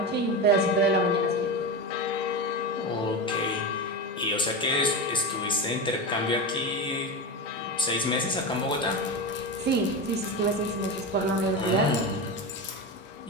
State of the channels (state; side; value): normal; both; correlation 0.20